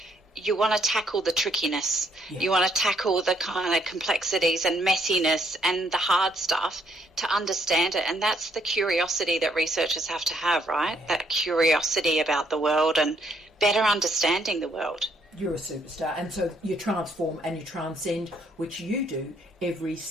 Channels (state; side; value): normal; both; correlation 0.70